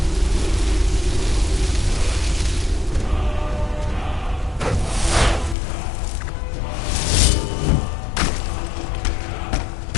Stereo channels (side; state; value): right; drops out; at 5.6 s